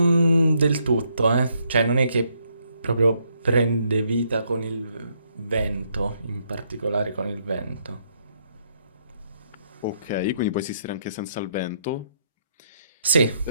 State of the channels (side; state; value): both; inverted; correlation -0.74